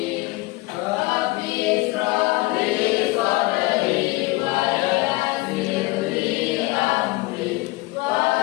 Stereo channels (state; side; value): quieter; right; 22.2 dB